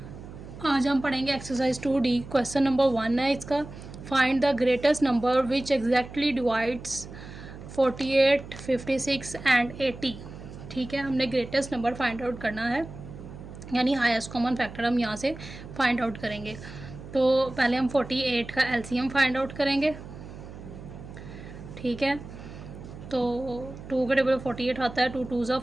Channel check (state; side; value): noise; right; hum, 14 dB below the sound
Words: आज हम पढ़ेंगे एक्सरसाइज 2D। क्वेश्चन नंबर 1 है इसका, find the greatest number which exactly divides 48, 56 and 80। ठीक है, हमने ग्रेटेस्ट नंबर फाइंड आउट करना है, यानी हाईएस्ट कॉमन फैक्टर हम यहाँ से फाइंड आउट करेंगे। तो पहले हम 48 का एलसीएम फाइंड आउट करेंगे। ठीक है, तो 2 के टेबल 48 आता है। 2 2 ज़ा